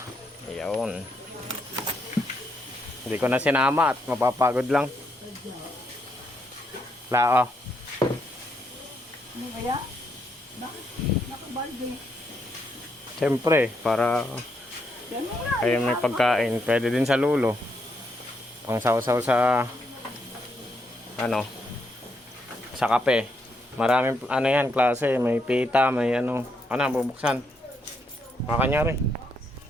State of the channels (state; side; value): normal; both; correlation 0.77